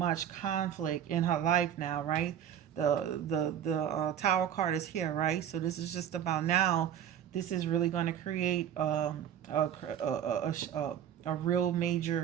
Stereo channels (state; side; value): quieter; left; 9.7 dB